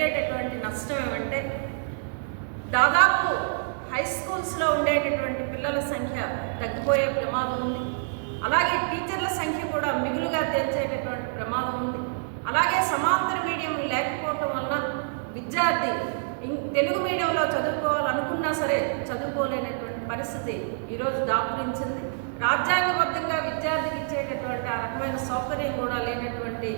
నష్టం ఏమంటే దాదాపు హై స్కూల్స్లో ఉండేటటువంటి పిల్లల సంఖ్య తగ్గిపోయే ప్రమాదం ఉంది. అలాగే టీచర్ల సంఖ్య కూడా మిగులుగా తెచ్చేటటువంటి ప్రమాదం ఉంది. అలాగే సమాంతర మీడియం లేకపోవటం వలన విద్యార్థి తెలుగు మీడియంలో చదువుకోవాలనుకున్నా సరే చదువుకోలేనటువంటి పరిస్థితి ఈరోజు దాపురించింది. రాజ్యాంగబద్ధంగా విద్యార్థికి ఇచ్చేటటువంటి ఆ రకమైన సౌకర్యం కూడా లేనటువంటి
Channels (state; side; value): silent; left; digital silence